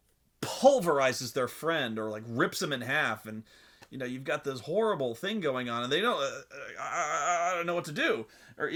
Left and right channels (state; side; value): identical; both; correlation 1.00